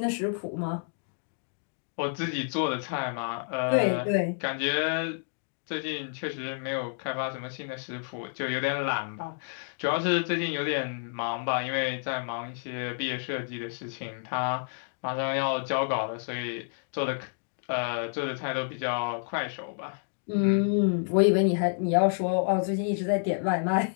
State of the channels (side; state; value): right; silent; digital silence